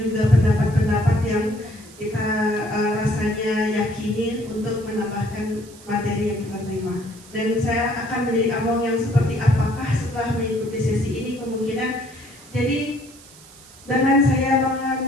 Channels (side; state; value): right; noise; hiss, 22 dB below the sound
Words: juga pendapat-pendapat yang kita rasanya yakini untuk menambahkan materi yang kita terima. Dan saya akan menjadi Among yang seperti apakah setelah mengikuti sesi ini, kemungkinan jadi dengan saya